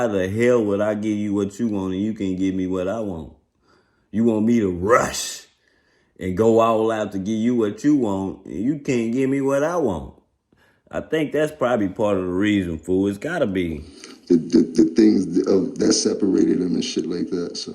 the hell would I give you what you want and you can't give me what I want? You want me to rush and go all out to give you what you want and you can't give me what I want. I think that's probably part of the reason, fool. It's gotta be. The things that separated them and shit like that. So,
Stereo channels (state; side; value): identical; both; correlation 1.00